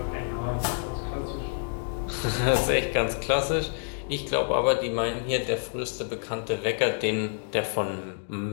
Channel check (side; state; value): right; silent; digital silence